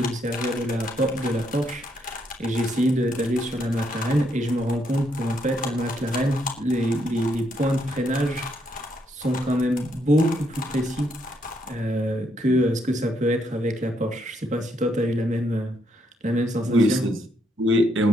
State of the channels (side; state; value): both; normal; correlation 0.75